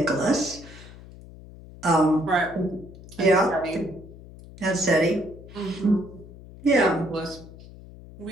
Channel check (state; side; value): noise; left; hum, 18 dB below the sound